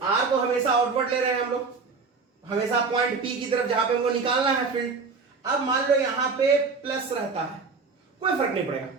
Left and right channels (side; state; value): left; quieter; 4.7 dB